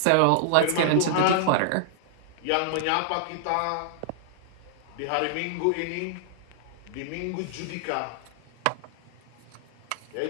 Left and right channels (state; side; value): different; both; correlation -0.01